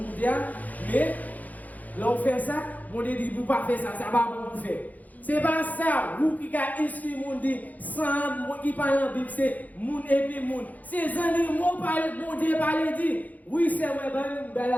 mais là on fait ça, on dit, vous ne pas faire ça, ça va bon pour faire. C'est pas ça, vous qui avez instruit le monde, sans monde qui parle en Bible, c'est monde et puis monde. Ces animaux parlent, mon Dieu parle dit, oui, c'est vrai, ben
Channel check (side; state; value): right; late; 0.079 ms